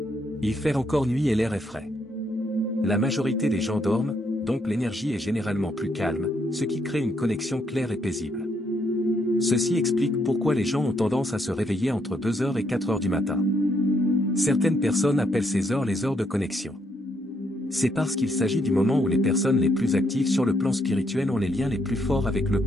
Il fait encore nuit et l'air est frais. La majorité des gens dorment, donc l'énergie est généralement plus calme, ce qui crée une connexion claire et paisible. Ceci explique pourquoi les gens ont tendance à se réveiller entre 2 heures et 4 heures du matin. Certaines personnes appellent ces heures les heures de connexion. C'est parce qu'il s'agit du moment où les personnes les plus actives sur le plan spirituel ont les liens les plus forts avec le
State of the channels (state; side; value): normal; both; correlation 0.74